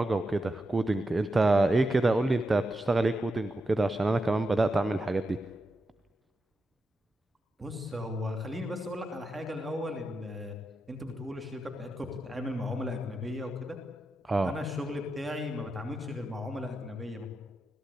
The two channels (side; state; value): both; normal; correlation 0.88